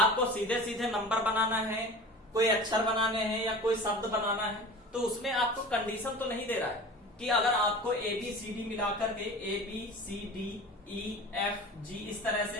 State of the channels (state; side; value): normal; both; correlation 0.36